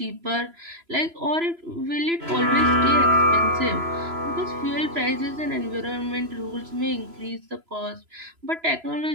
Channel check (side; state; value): left; late; 3.0 ms